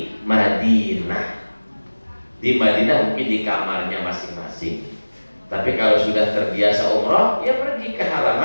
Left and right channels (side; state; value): both; inverted; correlation -1.00